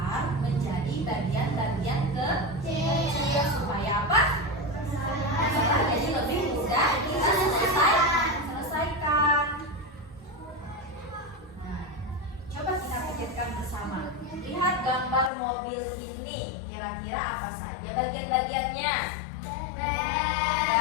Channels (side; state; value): right; drops out; at 15.3 s